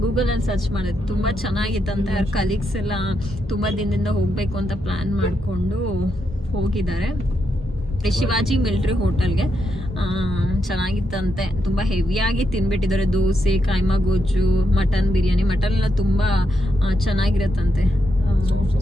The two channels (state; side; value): normal; both; correlation 0.82